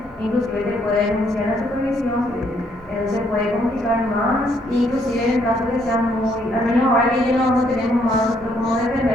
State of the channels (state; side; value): normal; both; correlation 0.70